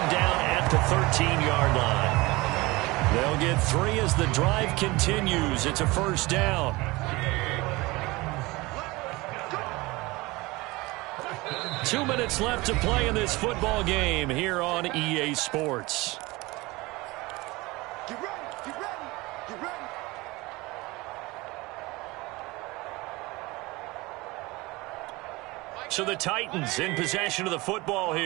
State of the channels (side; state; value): left; quieter; 22.2 dB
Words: down at the 13-yard line. They'll get 3 as the drive continues. It's a 1st down. Two minutes left to play in this football game here on EA Sports. Get ready. So the Titans in possession of the football